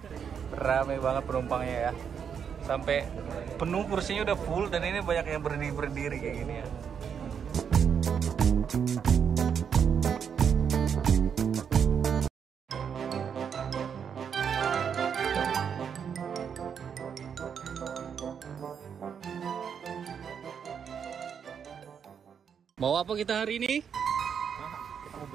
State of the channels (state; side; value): quieter; left; 7.4 dB